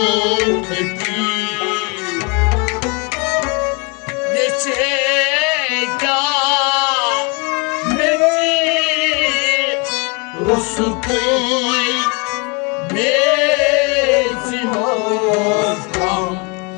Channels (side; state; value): right; quieter; 30.3 dB